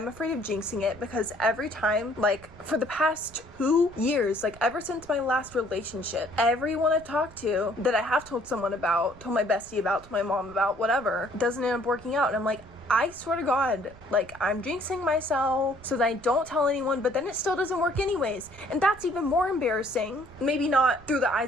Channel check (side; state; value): right; noise; rumble, 21 dB below the sound